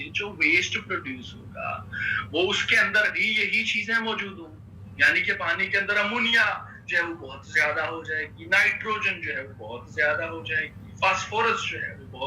जो वेस्ट प्रोड्यूस होगा वो उसके अंदर भी यही चीजें मौजूद होंगी. यानी कि पानी के अंदर अमोनिया जो है वो बहुत ज्यादा हो जाएगी, नाइट्रोजन जो है वो बहुत ज्यादा हो जाएगी, फास्फोरस जो है वो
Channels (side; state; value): both; identical; correlation 1.00